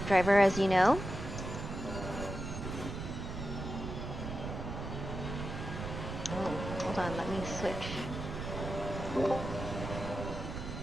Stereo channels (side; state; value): right; noise; rumble, 6 dB below the sound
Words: driver, as you know. Oh, hold on, let me switch.